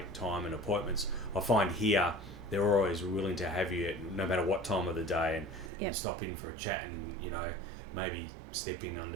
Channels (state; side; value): drops out; left; at 5.7 s